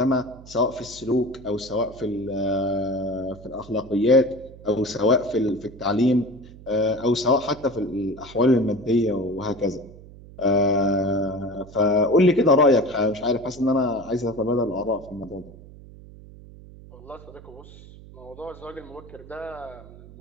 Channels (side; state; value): right; noise; hum, 19 dB below the sound